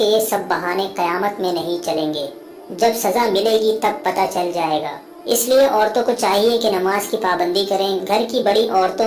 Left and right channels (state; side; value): identical; both; correlation 1.00